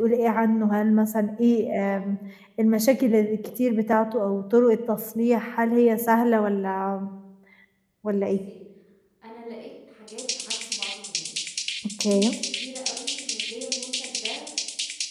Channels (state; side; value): identical; both; correlation 1.00